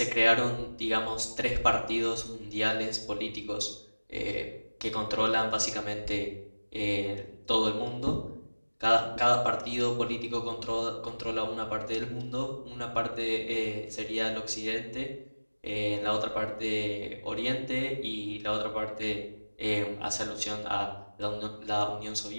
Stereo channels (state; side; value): inverted; both; correlation -1.00